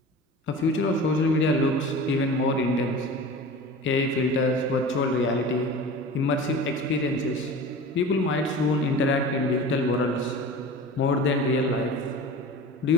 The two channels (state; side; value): normal; both; correlation 0.36